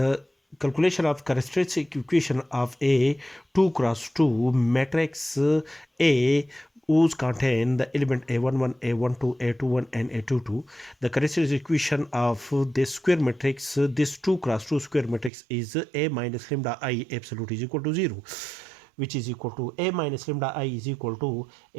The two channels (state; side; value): drops out; left; at 15.3 s